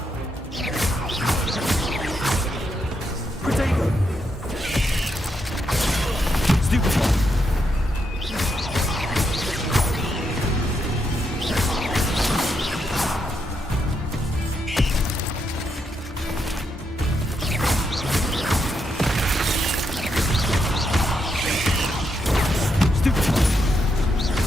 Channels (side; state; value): both; normal; correlation 0.80